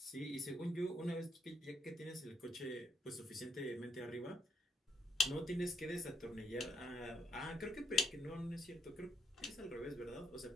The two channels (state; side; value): normal; both; correlation 0.75